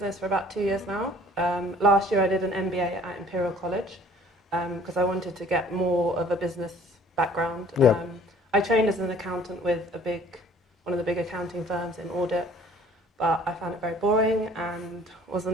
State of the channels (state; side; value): normal; both; correlation 0.53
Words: for about 2 years now. Last year I did an MBA at Imperial College because I wanted to get more of a business background. Yeah. I trained as an accountant with one of the big accounting firms in audit, but I found it very boring and